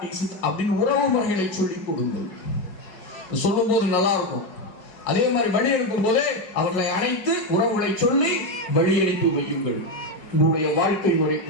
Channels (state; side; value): late; right; 5.4 ms